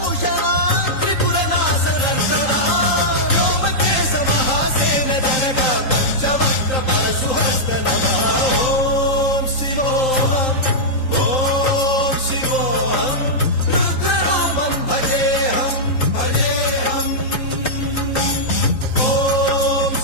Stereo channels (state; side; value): late; right; 3.8 ms